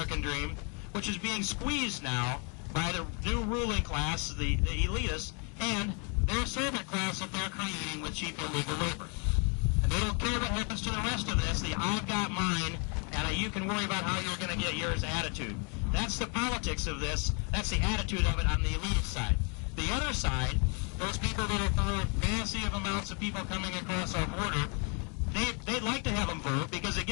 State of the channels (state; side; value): quieter; right; 35.6 dB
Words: dream, which is being squeezed now by the new ruling class, the elitists, and their servant class that they're creating with cheap illegal labor. And they don't care what happens to the rest of this, the I've got mine, and you can worry about how you're going to get yours attitude. That's the politics of this. That's the attitude of it on the elitist side. The other side, those people that are for massive amounts of people coming across our border, they'd like to have them vote because it